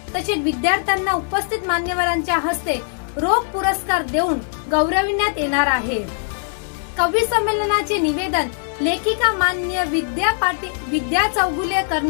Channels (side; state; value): right; silent; 65 dB below the other